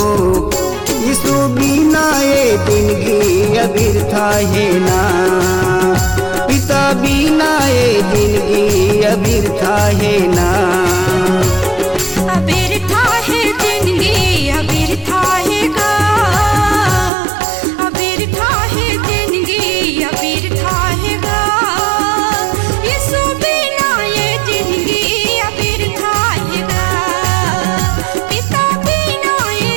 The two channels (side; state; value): left; drops out; at 17.1 s